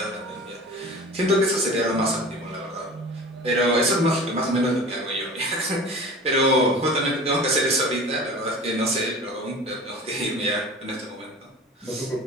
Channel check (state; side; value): normal; both; correlation 0.39